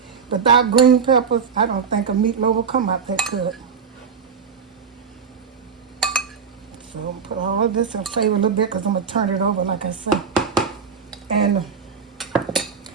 Without green peppers, I don't think a meatloaf will come out that good. So I'm gonna put all of this and flavor a little bit because I'm gonna turn it over like I said. And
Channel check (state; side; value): quieter; left; 6.2 dB